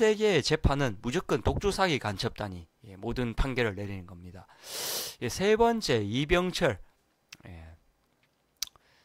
재판은 무조건 독주사기 간첩단이 모든 판결을 내리는 겁니다. 세 번째, 이병철.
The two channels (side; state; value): both; identical; correlation 1.00